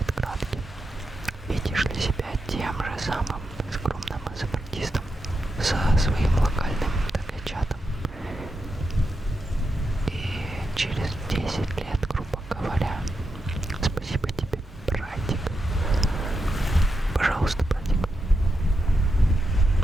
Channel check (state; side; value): normal; both; correlation 0.86